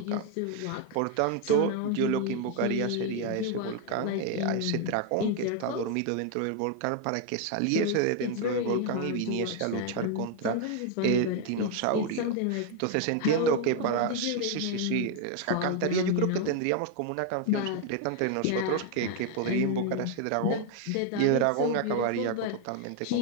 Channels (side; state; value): both; different; correlation 0.01